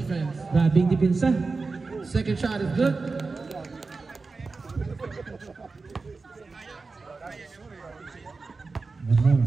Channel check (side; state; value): left; quieter; 4.1 dB